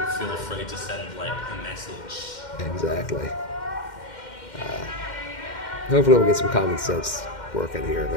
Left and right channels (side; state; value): right; late; 2.1 ms